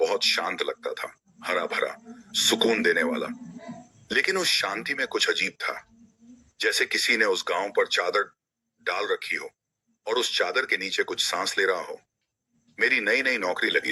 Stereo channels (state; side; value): identical; both; correlation 1.00